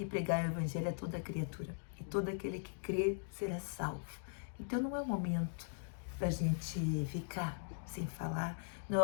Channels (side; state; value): right; silent; digital silence